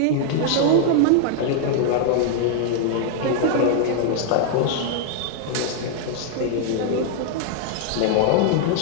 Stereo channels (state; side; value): different; both; correlation 0.00